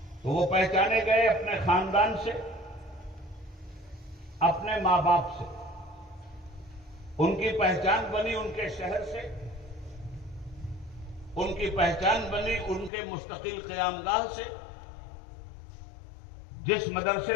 تو وہ پہچانے گئے اپنے خاندان سے، اپنے ماں باپ سے، ان کی پہچان بنی ان کے شہر سے، ان کی پہچان بنی ان کے مستقل قیام گاہ سے، جس مدرسے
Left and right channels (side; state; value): right; drops out; at 12.9 s